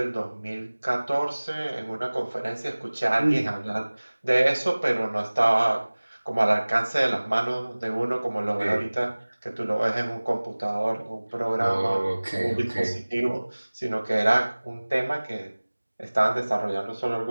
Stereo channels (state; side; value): inverted; both; correlation -1.00